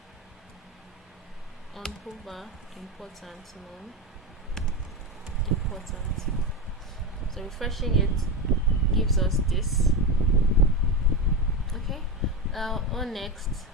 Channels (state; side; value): normal; both; correlation 0.17